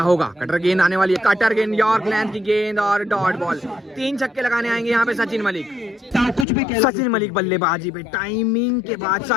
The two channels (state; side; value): drops out; right; at 6.5 s